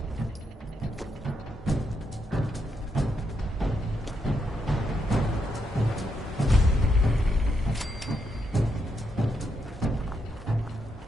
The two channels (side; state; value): both; normal; correlation 0.81